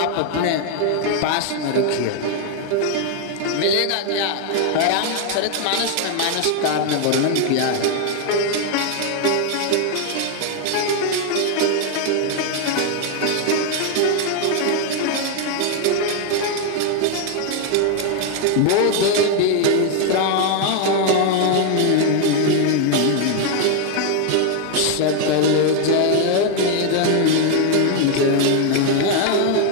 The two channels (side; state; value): both; different; correlation 0.01